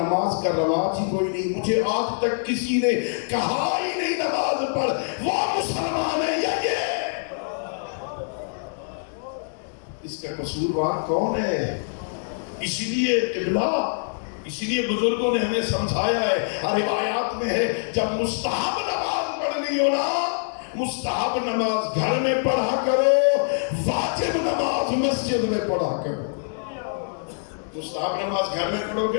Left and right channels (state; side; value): silent; right; digital silence